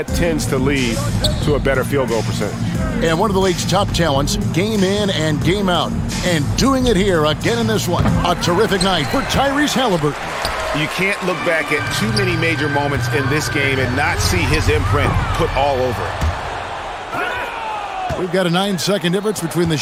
tends to lead to a better field goal percentage. And one of the league's top talents, game in and game out. And doing it here again in this one. A terrific night for Tyrese Halliburton. You can't look back at too many major moments in this game and not see his imprint put all over it. We've got a 9-second difference between the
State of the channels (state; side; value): identical; both; correlation 1.00